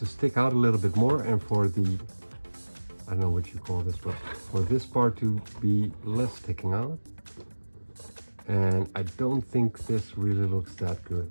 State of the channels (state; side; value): inverted; both; correlation -1.00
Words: stick out a little bit more and for the, I don't know what you call this, but for this part to be less sticking out. And I don't think this really looks that